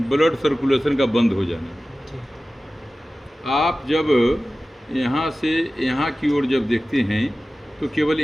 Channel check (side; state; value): both; normal; correlation 0.96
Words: ब्लड सर्कुलेशन का बंद हो जाना। आप जब यहाँ से यहाँ की ओर जब देखते हैं तो केवल